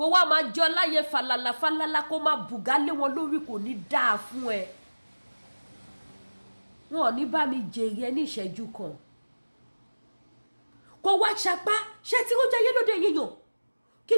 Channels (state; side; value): inverted; both; correlation -1.00